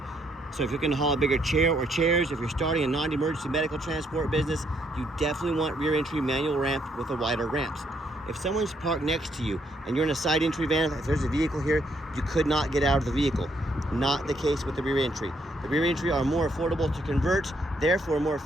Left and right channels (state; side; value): normal; both; correlation 0.72